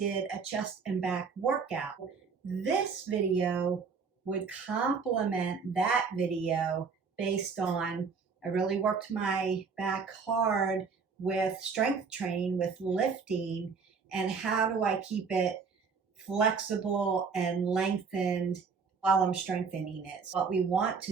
a chest and back workout. This video would complement that video based on I really worked my back hard with strength training, with lifting, and how do I keep it flexible and lengthened while I'm strengthening it. So what we want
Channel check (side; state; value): left; quieter; 5.4 dB